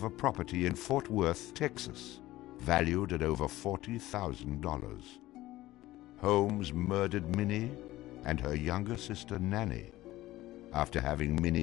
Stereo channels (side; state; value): right; quieter; 16.6 dB